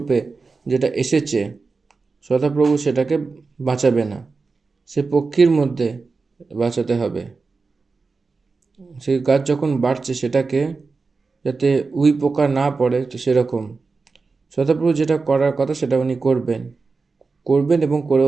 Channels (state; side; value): quieter; left; 4.2 dB